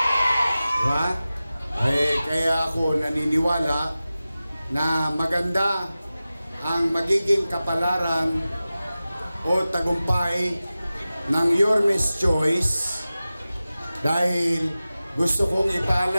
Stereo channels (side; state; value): both; inverted; correlation -0.96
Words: Diba? Kaya ako naniniwala na maganda ang magiging kapalaran o tagumpay ng Yormes Choice dahil gusto kong